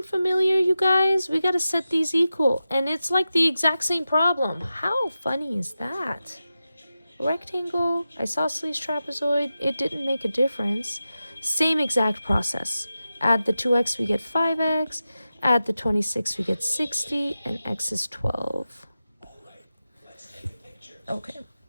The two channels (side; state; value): both; inverted; correlation -0.92